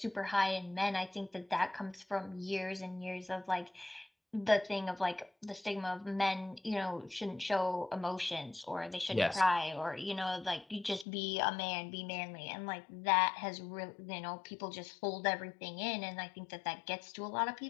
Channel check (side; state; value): right; drops out; at 11.1 s